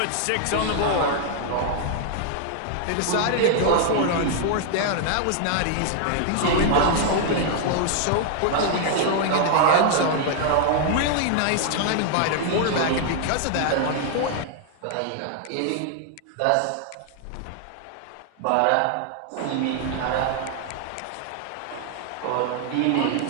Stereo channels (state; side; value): different; both; correlation 0.00